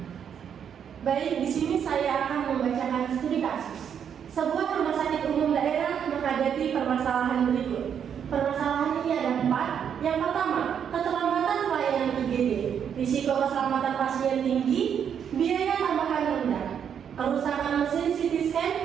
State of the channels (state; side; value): quieter; left; 8.1 dB